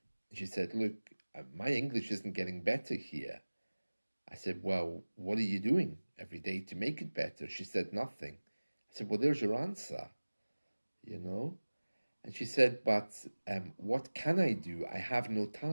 She said, "Look, my English isn't getting better here." I said, "Well, what are you doing every day to make it better?" She said, "Nothing." I said, "Well, there's your answer, you know?" And she said, "But what can I do? I have no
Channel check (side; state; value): both; inverted; correlation -1.00